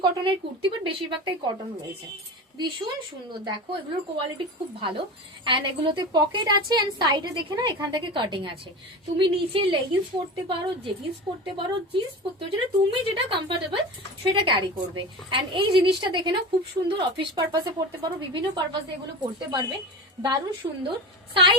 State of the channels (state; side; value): normal; both; correlation 0.29